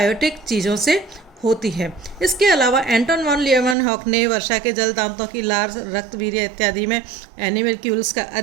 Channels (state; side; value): drops out; left; at 3.8 s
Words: चीज़ों से होती है। इसके अलावा एंटन वॉन लीएवनहॉक ने वर्षा के जल, दांतों की लार, रक्तवीर्य इत्यादि में एनिमल्क्यूल्स का